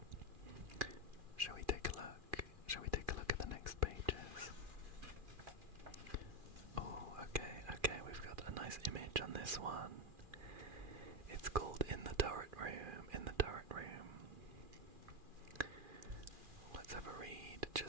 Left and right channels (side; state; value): left; late; 2.4 ms